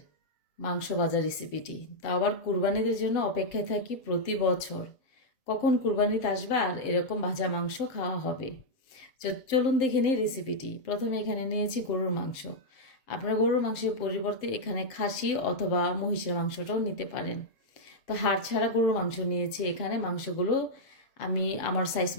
মাংস ভাজা রেসিপিটি, তাও আবার কুরবানিদের জন্য অপেক্ষায় থাকি প্রতি বছর, কখন কুরবানিতে আসবে আর এরকম ভাজা মাংস খাওয়া হবে। চলুন দেখে নিই রেসিপিটি। প্রথমে এখানে নিয়েছি গরুর মাংস। আপনারা গরুর মাংসের পরিবর্তে এখানে খাসি অথবা মহিষের মাংসটাও নিতে পারেন। তো হাড় ছাড়া গরুর মাংস নিয়েছি। এখানে মাংসগুলো আমি আমার সাইজ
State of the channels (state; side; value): late; right; 7.6 ms